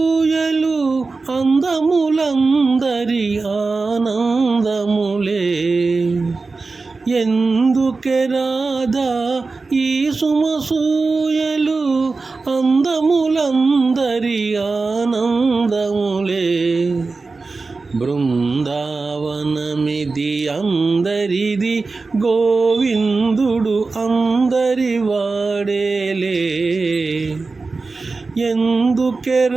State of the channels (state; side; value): quieter; left; 3.9 dB